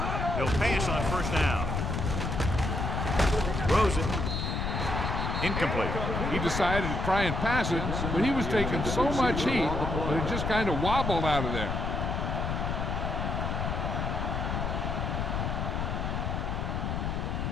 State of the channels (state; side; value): noise; left; rumble, 1 dB below the sound